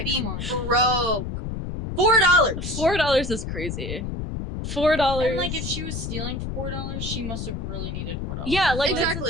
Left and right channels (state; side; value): noise; left; rumble, 5 dB below the sound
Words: be broke. $4. $4 is crazy. $4. And like if she was stealing $4, she must have really needed $4. Yeah, like Exactly. that's